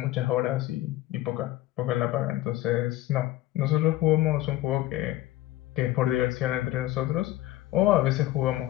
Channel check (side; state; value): right; quieter; 15.7 dB